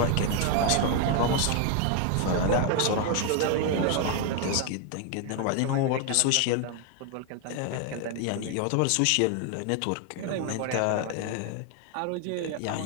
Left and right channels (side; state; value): both; different; correlation 0.01